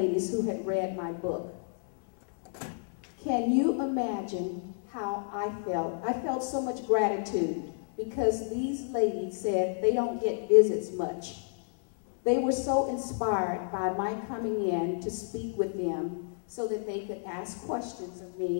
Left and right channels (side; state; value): right; silent; 58 dB below the other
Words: who had read my book. Can you imagine how I felt? I felt so much gratitude because these ladies said they don't get visits much. They were so inspired by my coming in to speak with them so that they could ask questions of